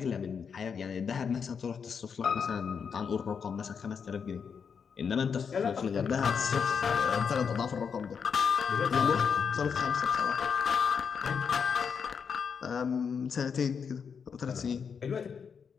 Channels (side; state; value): right; quieter; 6.4 dB